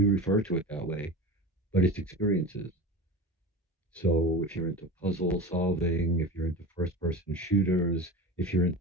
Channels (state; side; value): normal; both; correlation 0.31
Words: to it that way, but it's experiences. So if you're into puzzle solving, if you're into first person shooters, if you're into